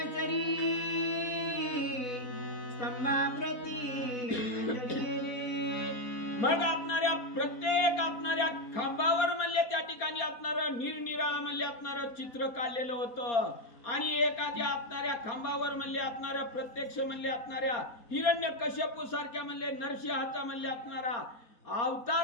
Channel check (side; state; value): right; late; 4.3 ms